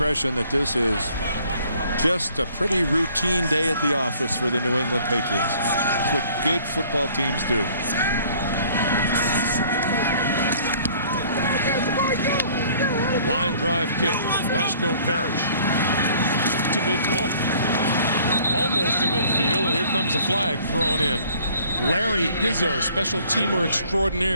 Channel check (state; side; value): inverted; both; correlation -0.56